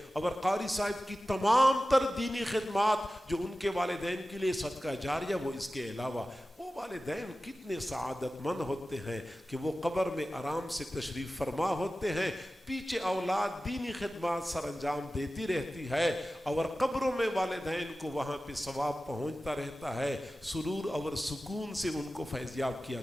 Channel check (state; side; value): normal; both; correlation 0.95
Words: اور قاری صاحب کی تمام تر دینی خدمات جو ان کے والدین کے لیے صدقہ جاریہ، وہ اس کے علاوہ۔ وہ والدین کتنے سعادت مند ہوتے ہیں کہ وہ قبر میں آرام سے تشریف فرما ہوتے ہیں، پیچھے اولاد دینی خدمات سر انجام دیتی رہتی ہے، اور قبروں میں والدین کو وہاں پہ ثواب پہنچتا رہتا ہے، سرور اور سکون سے ان کو فیضیاب کیا